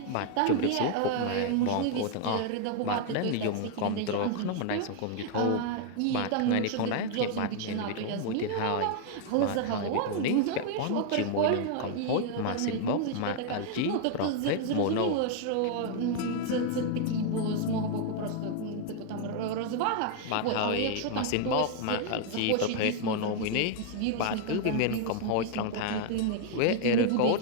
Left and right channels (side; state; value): both; different; correlation 0.00